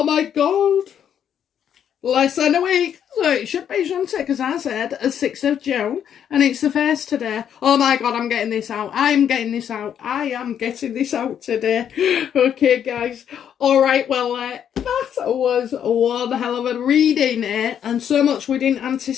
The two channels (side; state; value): right; quieter; 9.0 dB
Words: my God. Less than a week. So it should be, shouldn't it? Because I said a 6th of June and it's the 1st today. Oh my God, I'm getting this out. I am getting this out today. Okay, guys. All right, well, that was one hell of a reading, and so much we didn't